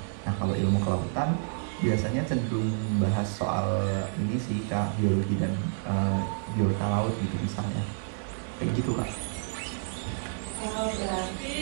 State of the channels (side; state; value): left; silent; 58 dB below the other